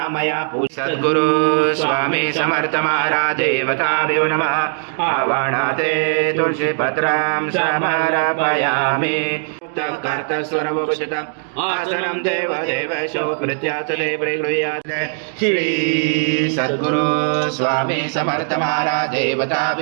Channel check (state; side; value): silent; left; digital silence